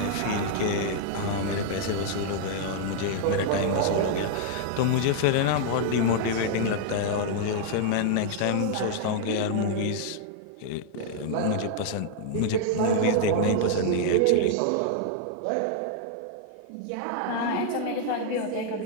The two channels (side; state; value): both; different; correlation -0.01